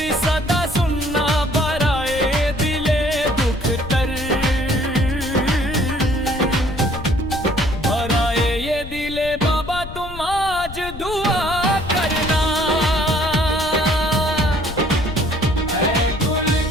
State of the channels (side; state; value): left; noise; rumble, 11 dB below the sound